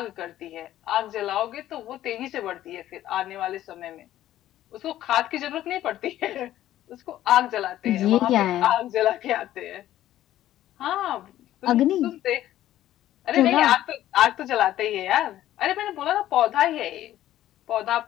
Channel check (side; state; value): right; quieter; 13.3 dB